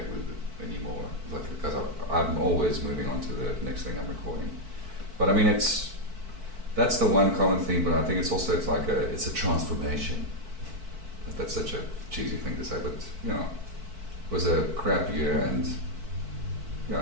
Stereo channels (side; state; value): left; late; 4.5 ms